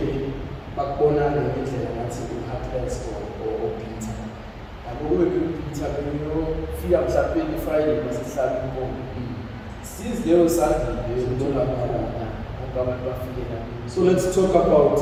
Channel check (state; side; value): identical; both; correlation 1.00